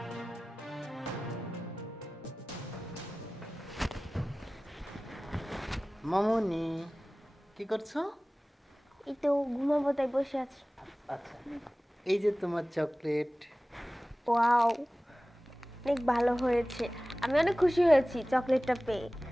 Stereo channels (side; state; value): both; normal; correlation 0.97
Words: মামনি, কি করছো? এই তো ঘুমাবো তাই বসে আছি। আচ্ছা, এই যে তোমার চকলেট। ওয়াও, অনেক ভালো হয়েছে। আমি অনেক খুশি হয়েছি চকলেটটা পেয়ে।